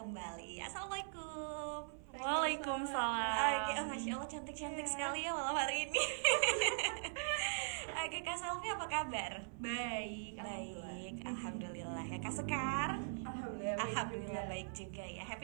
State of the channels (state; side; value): silent; left; 50 dB below the other